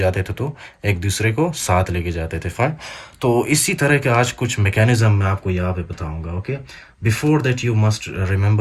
थे, तो एक दूसरे को साथ लेके जाते थे, फाइन. तो इसी तरह के आज कुछ मैकेनिज्म मैं आपको यहाँ पे बताऊंगा. Okay, before that you must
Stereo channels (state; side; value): identical; both; correlation 1.00